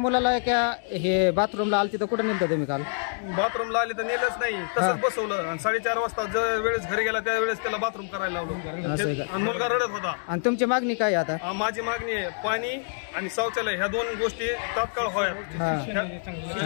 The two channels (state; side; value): silent; right; 61 dB below the other